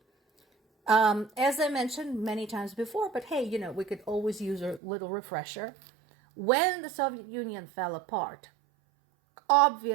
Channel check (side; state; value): left; drops out; at 4.8 s